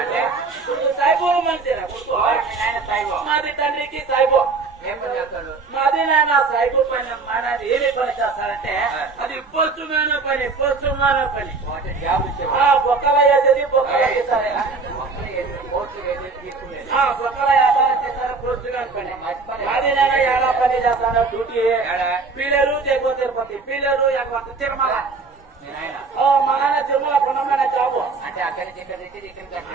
సాయిబో మంచిరా ఆయన సాయిబో మాది తండ్రికి సాయిబో ఏం పని చేస్తాడు మాది నాన్న సాయిబో పని మానది ఏమి పని చేస్తారంటే అది పోస్టుమైన పని జాబ్ బొక్కల వేసేది బొక్కల చేస్తారే బొక్కల చేస్తారు పోస్టుగా పని మాది నాన్న ఎలా పని చేస్తాను డ్యూటీ పిల్లలు తెగో తిరుపతి పిల్లలు తిరుమల మా నాన్న తిరుమల పొన్నమైన జాబు అంటే అక్కడి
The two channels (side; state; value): left; quieter; 4.2 dB